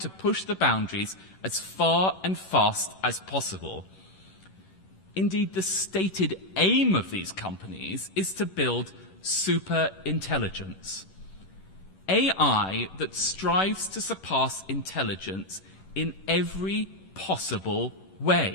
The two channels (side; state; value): right; late; 11 ms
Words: push the boundaries as far and fast as possible. Indeed, the stated aim of these companies is to build super intelligence. AI that strives to surpass intelligence in every possible